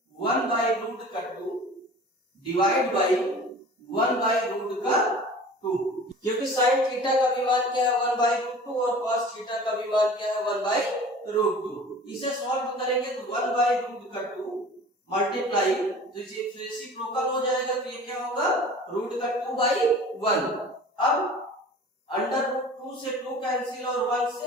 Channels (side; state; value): both; normal; correlation 0.42